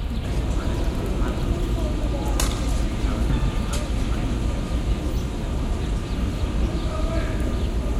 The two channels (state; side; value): identical; both; correlation 1.00